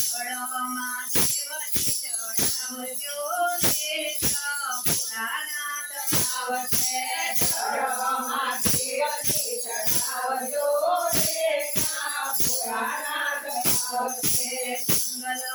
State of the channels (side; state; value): both; identical; correlation 1.00